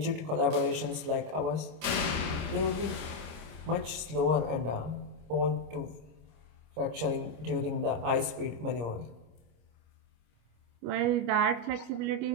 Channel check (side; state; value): left; late; 26 ms